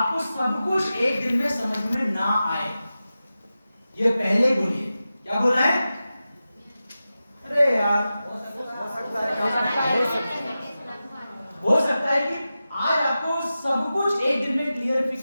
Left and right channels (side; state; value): both; inverted; correlation -0.93